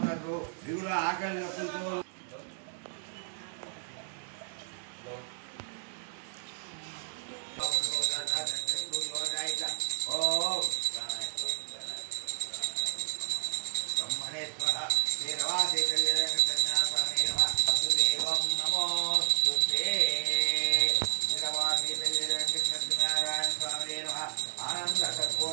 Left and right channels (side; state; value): left; silent; digital silence